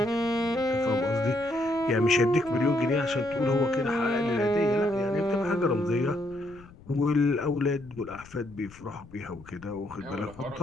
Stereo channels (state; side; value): noise; left; rumble, 21 dB below the sound